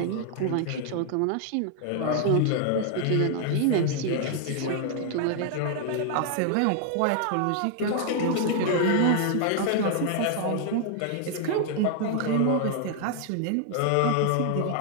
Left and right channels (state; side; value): different; both; correlation 0.00